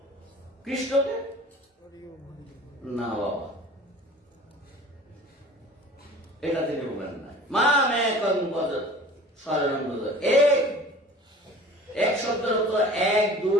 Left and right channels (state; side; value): normal; both; correlation 0.44